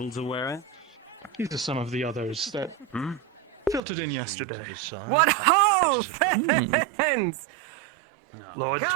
to wear it? These are some of the others that filtered in yesterday. What ho, friends! Lord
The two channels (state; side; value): drops out; left; at 3.8 s